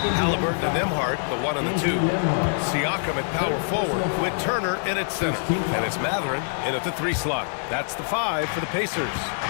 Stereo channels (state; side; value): silent; right; digital silence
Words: Halliburton and Nembhard, the 1 and the 2. Siakam at power forward with Turner in at center. And it's Mathurin in at the 3 slot. That's the 5 for the Pacers.